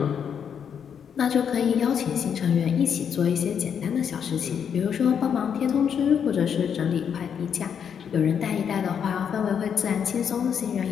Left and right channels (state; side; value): quieter; right; 7.7 dB